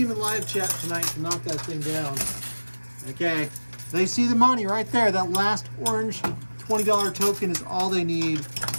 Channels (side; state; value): both; inverted; correlation -1.00